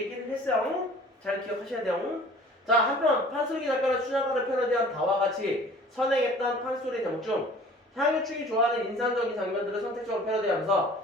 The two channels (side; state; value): both; normal; correlation 0.48